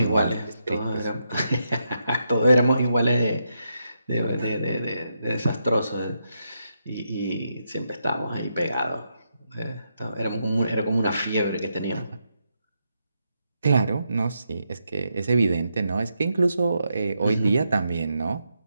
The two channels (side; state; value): both; inverted; correlation -0.82